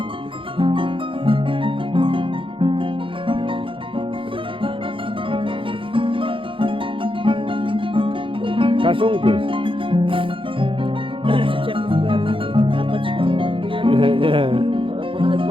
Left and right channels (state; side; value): late; left; 0.25 ms